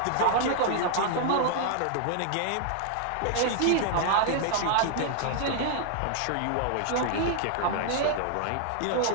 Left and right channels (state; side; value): different; both; correlation 0.00